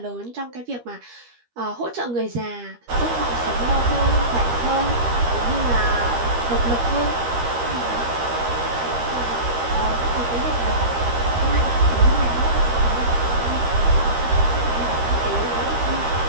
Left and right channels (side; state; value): left; late; 13 ms